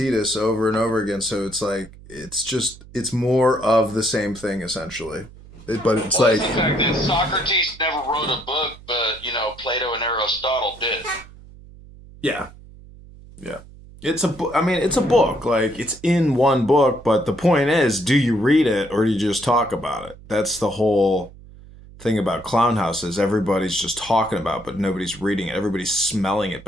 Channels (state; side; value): noise; right; hum, 20 dB below the sound